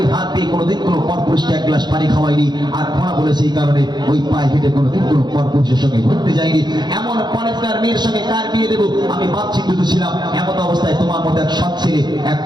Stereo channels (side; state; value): left; late; 0.21 ms